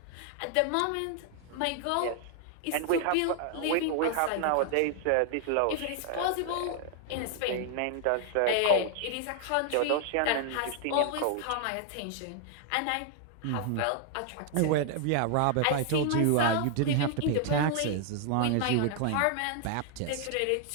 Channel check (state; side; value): different; both; correlation 0.00